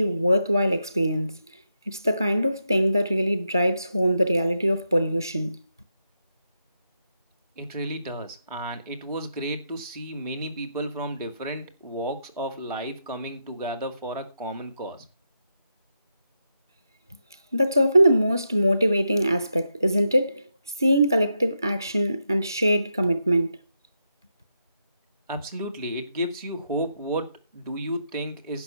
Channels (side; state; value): both; inverted; correlation -0.83